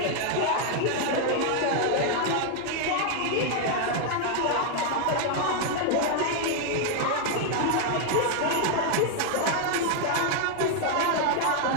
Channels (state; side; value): different; both; correlation 0.00